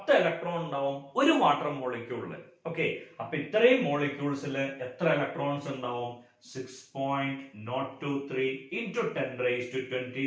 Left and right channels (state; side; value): identical; both; correlation 1.00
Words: ഇലക്ട്രോൺ ഉണ്ടാവും ഒരു വാട്ടർ മോളിക്യൂളില്. ഓക്കെ, അപ്പൊ ഇത്രയും മോളിക്യൂൾസിൽ എത്ര ഇലക്ട്രോൺസ് ഉണ്ടാവും? 6.023 into